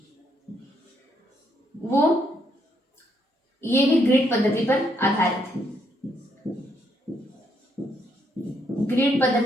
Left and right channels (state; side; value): normal; both; correlation 0.74